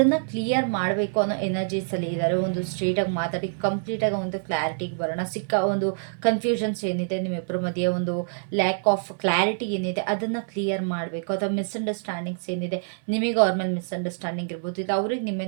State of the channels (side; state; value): left; silent; 58 dB below the other